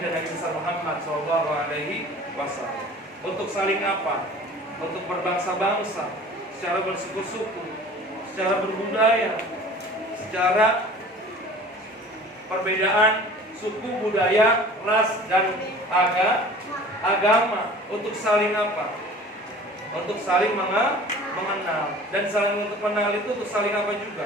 Nabi Muhammad SAW? Untuk saling apa? Untuk berbangsa-bangsa, secara bersuku-suku, secara berbudaya, secara perbedaan suku, budaya, ras, dan agama. Untuk saling apa? Untuk saling mengenal. Dan saling untuk mengenal itu untuk saling apa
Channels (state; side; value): normal; both; correlation 0.45